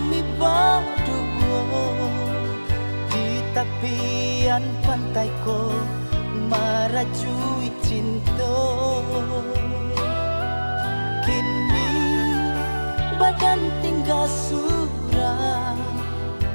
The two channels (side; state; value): both; inverted; correlation -1.00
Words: berdua di tepian pantai ko merajui cinta. Kini badan tinggal surah,